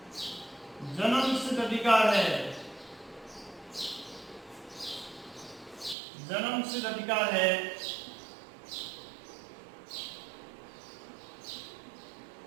जन्मसिद्ध अधिकार है। जन्मसिद्ध अधिकार है।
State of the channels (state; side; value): drops out; left; at 6.0 s